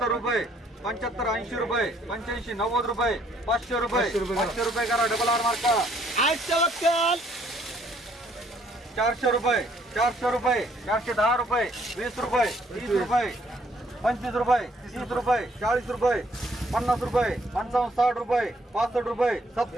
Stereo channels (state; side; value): normal; both; correlation 0.65